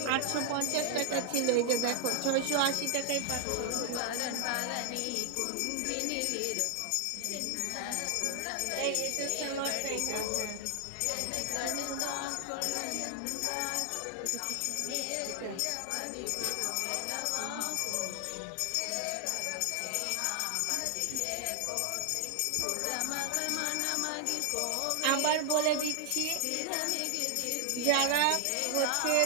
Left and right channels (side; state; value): both; different; correlation 0.00